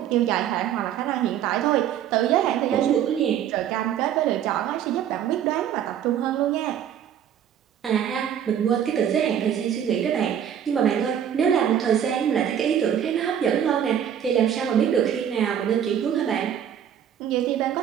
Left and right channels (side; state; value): left; quieter; 9.4 dB